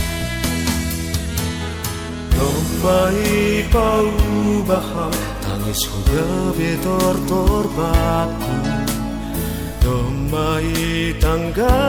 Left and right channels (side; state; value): both; identical; correlation 1.00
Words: Mai paubaham tangis ko gabi tortorbaku Domai